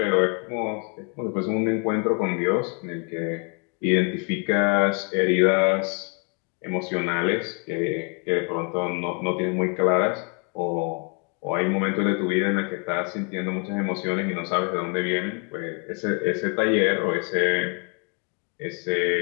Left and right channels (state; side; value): quieter; right; 37.0 dB